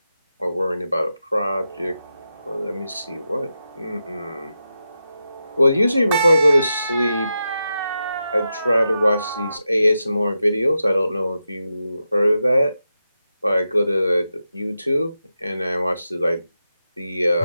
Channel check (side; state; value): both; inverted; correlation -0.88